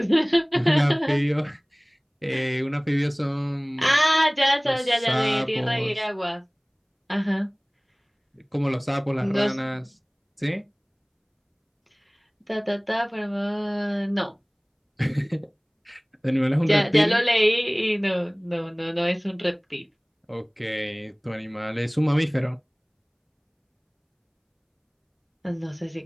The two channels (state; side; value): identical; both; correlation 1.00